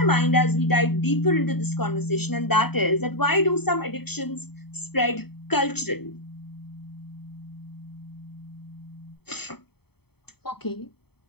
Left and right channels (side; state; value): right; late; 0.97 ms